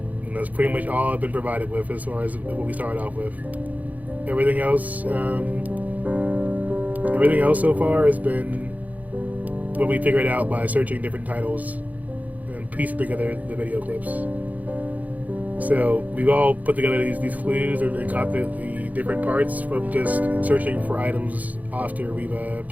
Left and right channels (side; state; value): left; late; 0.077 ms